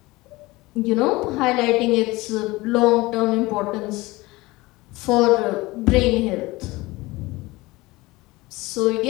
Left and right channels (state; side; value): quieter; right; 21.1 dB